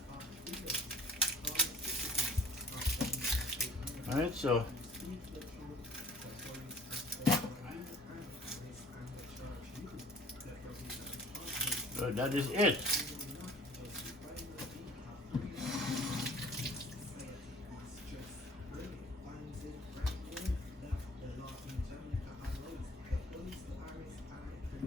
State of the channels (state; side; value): normal; both; correlation 0.51